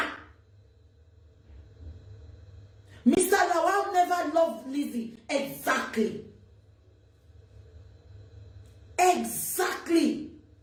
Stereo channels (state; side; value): identical; both; correlation 1.00